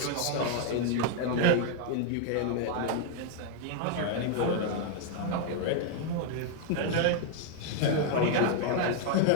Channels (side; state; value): both; different; correlation 0.00